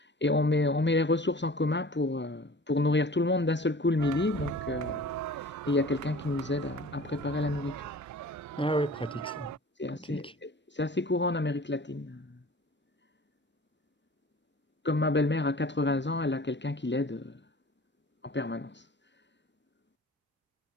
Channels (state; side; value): normal; both; correlation 0.43